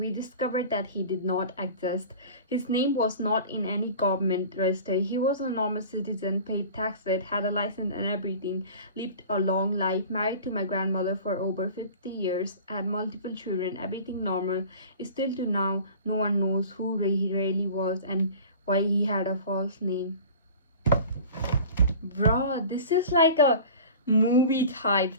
discovered that he did not exist. His name was not in any government register. He was a normal citizen, paid taxes, had a license and everything, lived a long life, married to my grandmother for over 50 years, had multiple children, everything normal. Still to now, no one knows who he really was and why he had a false name. Bro, this is like a movie type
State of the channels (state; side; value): inverted; both; correlation -0.40